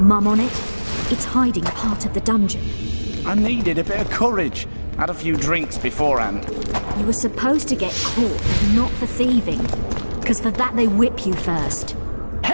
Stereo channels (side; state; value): both; inverted; correlation -1.00